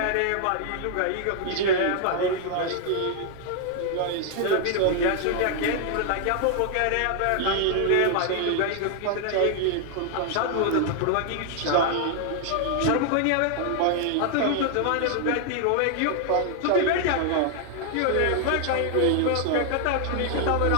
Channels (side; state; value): both; different; correlation 0.00